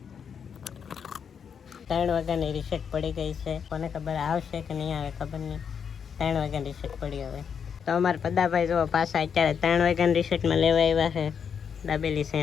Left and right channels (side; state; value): right; quieter; 7.1 dB